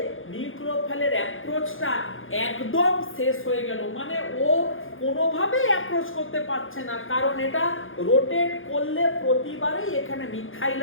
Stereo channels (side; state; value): right; late; 0.59 ms